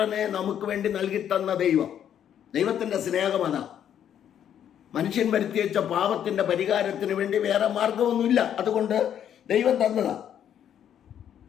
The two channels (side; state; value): right; quieter; 9.6 dB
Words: നമുക്ക് വേണ്ടി നൽകി തന്ന ദൈവം. ദൈവത്തിൻ്റെ സ്നേഹമതാ. മനുഷ്യൻ വരുത്തി വെച്ച പാപത്തിന്റെ പരിഹാരത്തിന് വേണ്ടി വേറെ മാർഗമൊന്നുമില്ല. അതുകൊണ്ട് ദൈവം തന്നതാ.